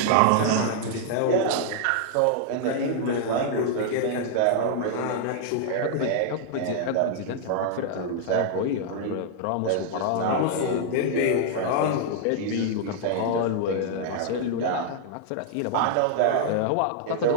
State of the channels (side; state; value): both; different; correlation -0.01